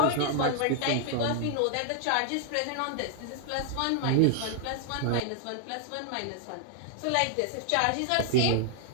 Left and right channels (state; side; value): different; both; correlation -0.01